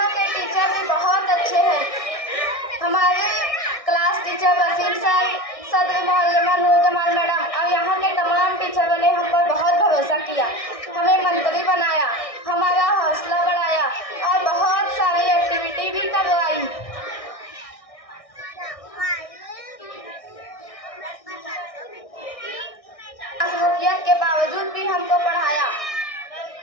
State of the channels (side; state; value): right; late; 1.6 ms